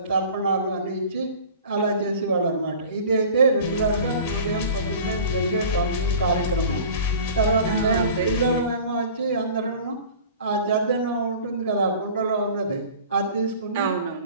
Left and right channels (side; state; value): both; inverted; correlation -0.43